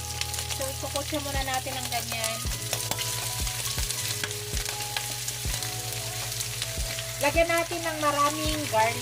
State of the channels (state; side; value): identical; both; correlation 1.00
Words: So, ikukutsa muna natin ng ganyan. Lagyan natin ng maraming